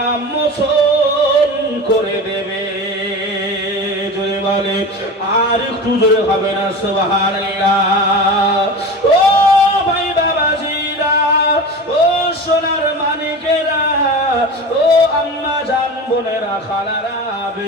মোচন করে দেবে। জোরে বলে, আর একটু জোরে হবে না সুবহানাল্লাহ। ও ভাই বাবাজিরা, ও সোনার মানিকেরা, ও আম্মা জান বোনেরা, খালারা,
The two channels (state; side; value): normal; both; correlation 0.31